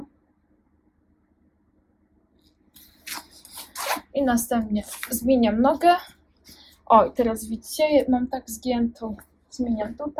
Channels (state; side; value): identical; both; correlation 1.00